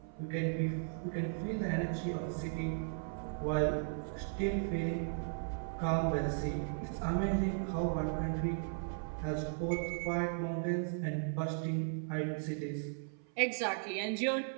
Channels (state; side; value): silent; left; 53 dB below the other